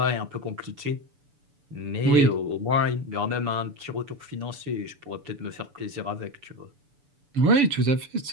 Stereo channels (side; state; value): left; late; 6.9 ms